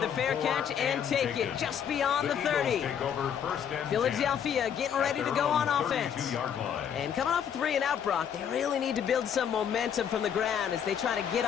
the fair catch and take it just beyond the 30. Philadelphia getting ready to go on offense. And coming off a 3-and-out, Brock, they really need to build some momentum from the ground as they try to get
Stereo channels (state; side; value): quieter; right; 8.4 dB